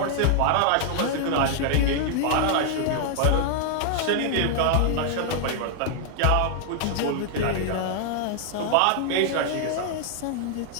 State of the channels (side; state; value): both; different; correlation 0.00